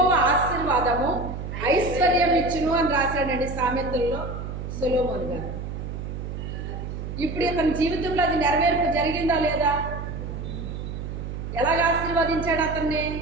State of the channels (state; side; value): noise; right; hum, 7 dB below the sound